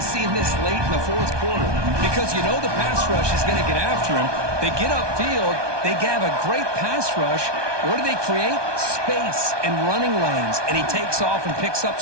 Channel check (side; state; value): left; late; 1.2 ms